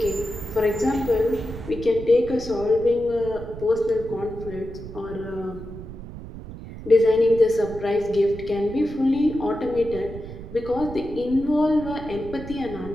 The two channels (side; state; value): right; noise; rumble, 12 dB below the sound